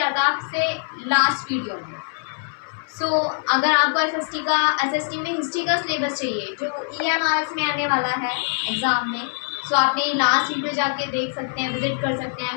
था आपसे लास्ट वीडियो में। सो अगर आपको एसएसटी में हिस्ट्री का सिलेबस चाहिए जो ईएमआरएस में आने वाला है एग्ज़ाम में, सो आपने लास्ट वीडियो जाके देख सकते हैं, विजिट कर सकते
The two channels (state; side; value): silent; right; 59 dB below the other